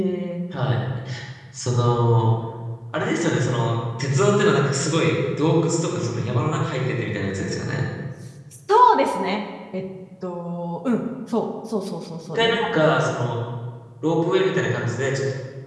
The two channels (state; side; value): identical; both; correlation 1.00